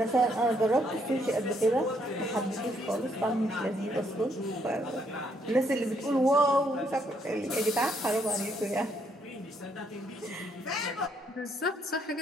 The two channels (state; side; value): normal; both; correlation 0.71